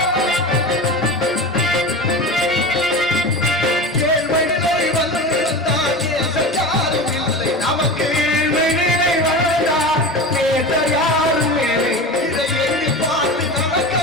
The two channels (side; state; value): both; normal; correlation 0.29